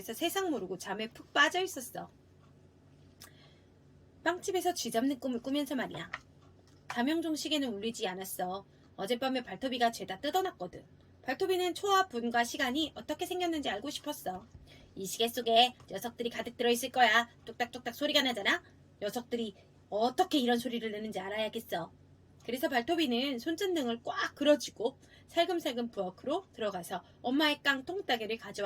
세상 모르고 잠에 푹 빠져 있었어. 빵집에서 쥐잡는 꿈을 꾸면서 말이야. 자명종 시계는 울리지 않았어. 어젯밤에 발토비가 죄다 뜯어놨거든. 발토비는 초와 분과 시간이 어떻게 생겼는지 알고 싶었어. 이 시계 속에 녀석들이 가득 들어있을 거야. 뚝딱뚝딱 소리가 나잖아. 녀석들이 어떻게 이런 소리를 내는지 알아야겠어. 그래서 발토비는 손전등을 꽉 그려쥐고 살금살금 부엌으로 들어가서 엄마의 깡통 따개를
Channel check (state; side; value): identical; both; correlation 1.00